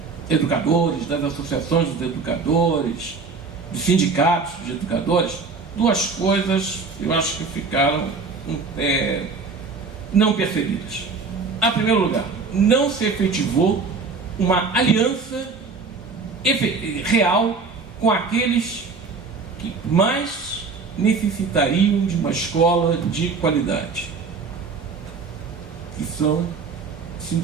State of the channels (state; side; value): quieter; left; 4.6 dB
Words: educadores, das associações dos educadores, dos sindicatos de educadores, duas coisas eu acho que ficaram não percebidas. Em primeiro lugar, não se efetivou uma aliança real com aqueles que mais necessitariam de uma escola de qualidade, que são